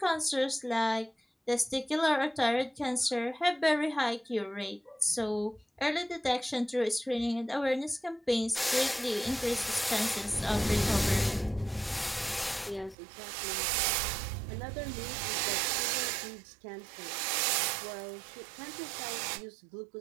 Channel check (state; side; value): drops out; left; at 13.0 s